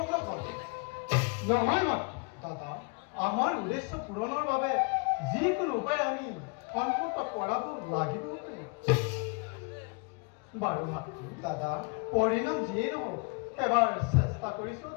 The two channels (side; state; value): right; quieter; 33.4 dB